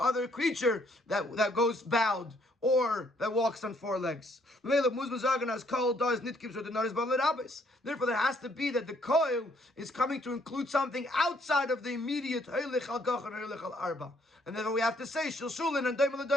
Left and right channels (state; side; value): normal; both; correlation 0.67